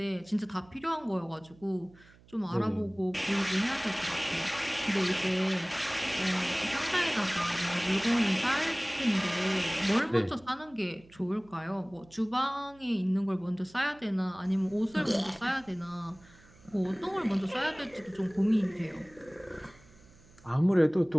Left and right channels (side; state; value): right; noise; hum, 26 dB below the sound